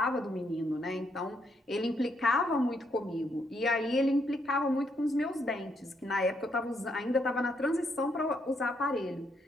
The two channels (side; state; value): both; normal; correlation 0.76